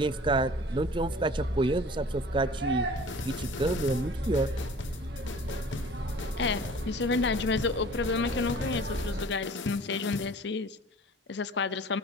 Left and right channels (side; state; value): both; normal; correlation 0.46